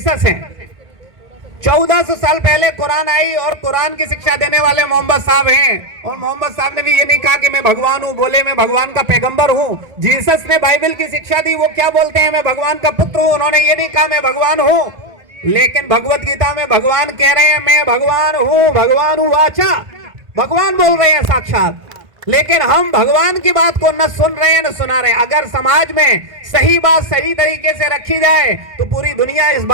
हैं। 1400 साल पहले कुरान आई और कुरान की शिक्षा देने वाले मोहम्मद साहब हैं। और मोहम्मद साहब ने भी ये नहीं कहा कि मैं भगवान हूं, बोले मैं भगवान का पैगंबर हूं। जीसस ने बाइबल की शिक्षा दी, वो क्या बोलते हैं? मैं भगवान का पुत्र हूं। उन्होंने ये नहीं कहा मैं भगवान हूं। लेकिन भगवत गीता में भगवान कह रहे हैं मैं भगवान हूं वाचा। भगवान बोल रहे हैं साक्षात। लेकिन हम भगवान की बात को न सुन रहे हैं न सुना रहे हैं। अगर समाज में सही बात सही तरीके से रखी जाए तो पूरी दुनिया इस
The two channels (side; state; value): left; late; 1.5 ms